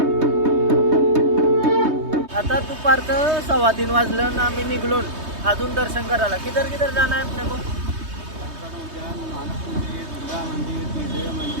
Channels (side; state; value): left; late; 3.2 ms